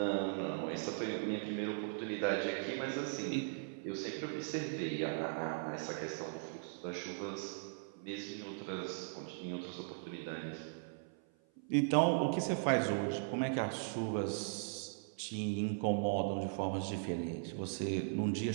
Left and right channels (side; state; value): left; silent; 52 dB below the other